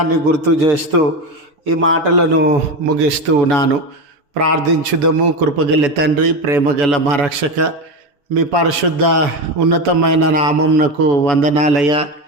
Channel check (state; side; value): late; left; 7.0 ms